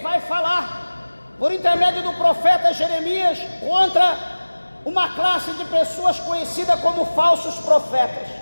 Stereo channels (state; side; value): inverted; both; correlation -1.00